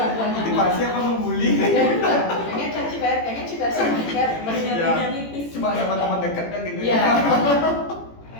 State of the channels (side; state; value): right; late; 18 ms